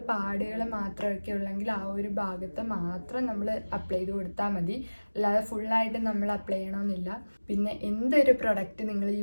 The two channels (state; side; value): inverted; both; correlation -1.00